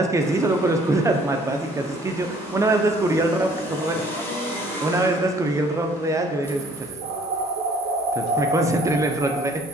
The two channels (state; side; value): normal; both; correlation 0.57